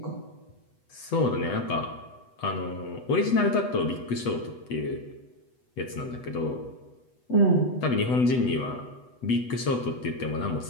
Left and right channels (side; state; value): right; late; 8.1 ms